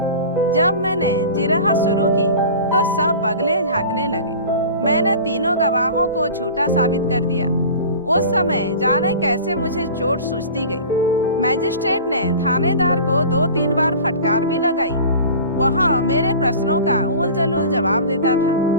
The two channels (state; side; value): inverted; both; correlation -0.38